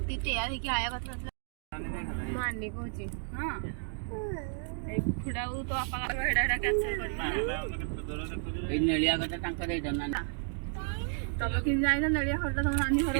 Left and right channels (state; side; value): silent; left; 56 dB below the other